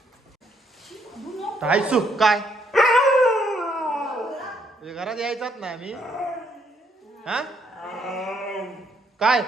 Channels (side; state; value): both; normal; correlation 0.71